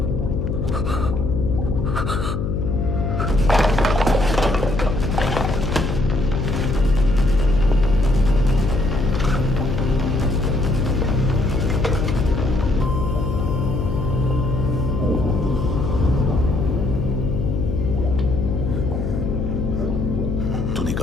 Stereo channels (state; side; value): noise; left; hum, 2 dB below the sound